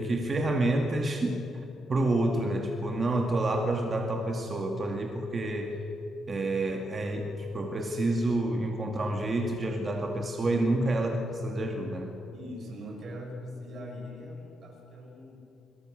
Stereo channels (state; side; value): normal; both; correlation 0.83